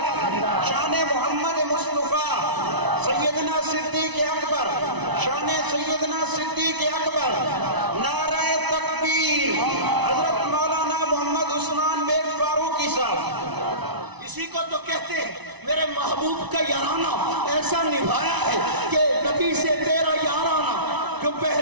شان محمد مصطفیٰ، سیدنا صدیق اکبر، شان سیدنا صدیق اکبر، نعرہ تکبیر، حضرت مولانا محمد عثمان بن فاروقی صاحب۔ اسی کو تو کہتے ہیں میرے محبوب کا یارانہ ایسا نبھایا ہے کہ نبی سے تیرا یارانہ جو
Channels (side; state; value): left; late; 1.0 ms